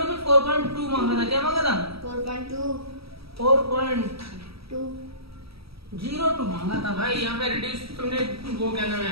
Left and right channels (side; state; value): left; late; 0.76 ms